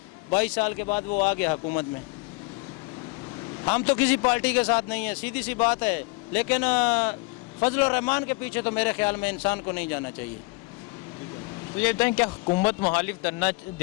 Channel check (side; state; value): right; quieter; 27.2 dB